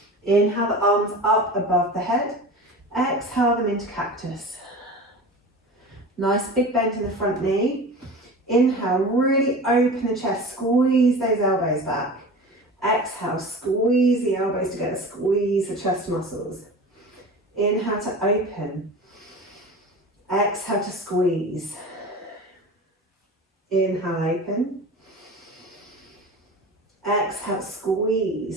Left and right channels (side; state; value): both; normal; correlation 0.34